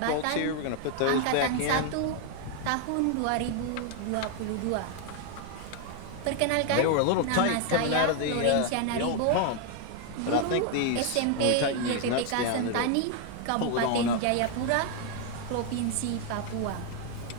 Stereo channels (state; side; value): different; both; correlation 0.00